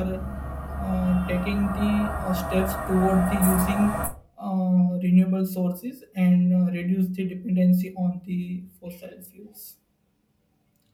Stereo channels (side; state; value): both; identical; correlation 1.00